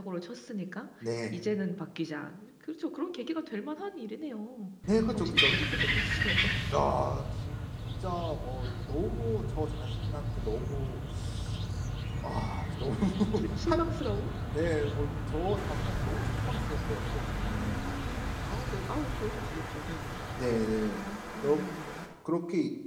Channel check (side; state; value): both; identical; correlation 1.00